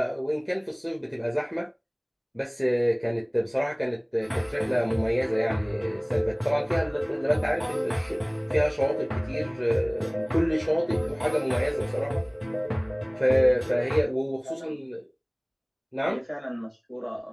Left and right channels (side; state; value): both; identical; correlation 1.00